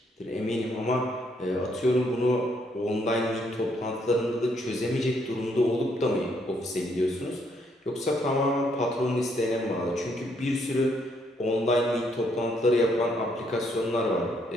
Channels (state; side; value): normal; both; correlation 0.71